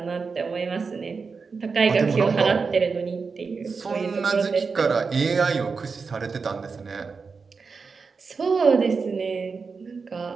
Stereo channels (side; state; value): left; quieter; 4.9 dB